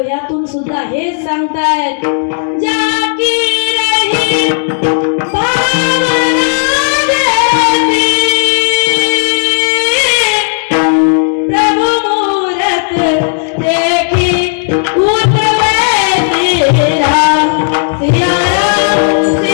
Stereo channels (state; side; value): silent; right; digital silence